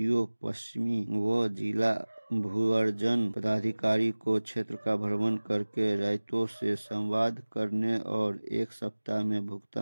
पश्चिमी व जिला भूअर्जन पदाधिकारी को क्षेत्र का भ्रमण करके रायतों से संवाद करने और 1 सप्ताह में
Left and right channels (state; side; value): inverted; both; correlation -1.00